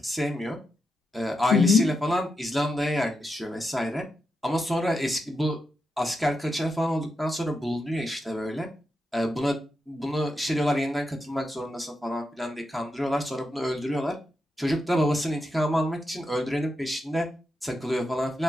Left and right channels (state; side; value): normal; both; correlation 0.86